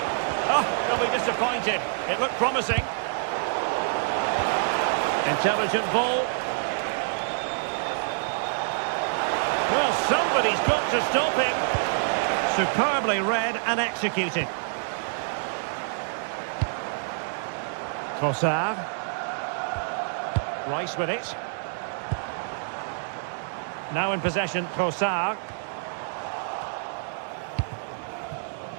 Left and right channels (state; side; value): silent; left; digital silence